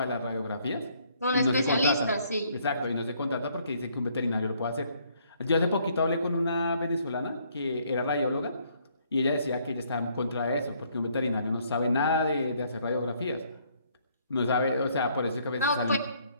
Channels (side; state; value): both; inverted; correlation -0.66